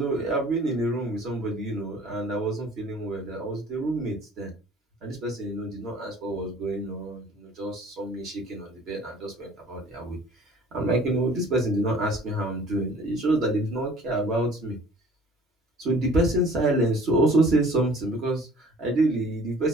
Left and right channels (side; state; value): both; normal; correlation 0.51